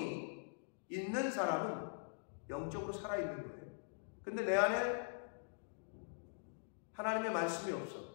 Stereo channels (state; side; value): silent; right; digital silence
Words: 있는 사람은 영적으로 살아있는 거예요. 근데 내 안에 하나님의 말씀이